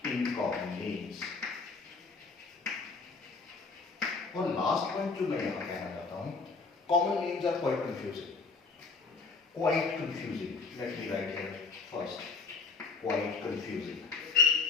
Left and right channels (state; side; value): quieter; right; 4.5 dB